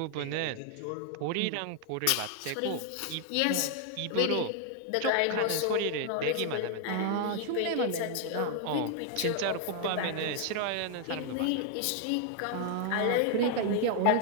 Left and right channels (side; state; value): both; different; correlation 0.00